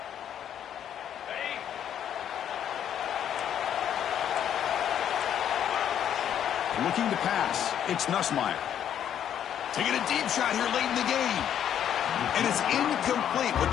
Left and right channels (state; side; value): quieter; right; 9.7 dB